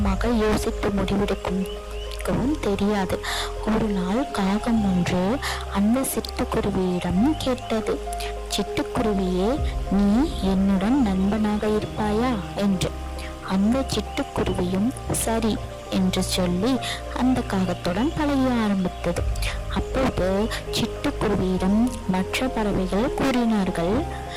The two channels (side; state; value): both; identical; correlation 1.00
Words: யோசித்து முடிவெடுக்கும் தெரியாது. ஒரு நாள் காகம் ஒன்று அந்த சிட்டுக்குருவியிடம் கேட்டது, சிட்டுக்குருவியே, நீ என்னுடன் நண்பனாக இருப்பாயா என்று. அந்த சிட்டுக்குருவியும் சரி என்று சொல்லி அந்த காகத்துடன் பழக ஆரம்பித்தது. அப்போது சிட்டுக்குருவியிடம் மற்ற பறவைகள் கூறினார்கள்,